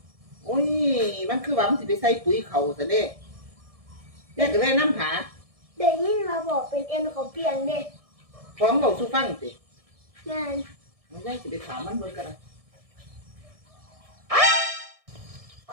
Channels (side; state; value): left; late; 1.6 ms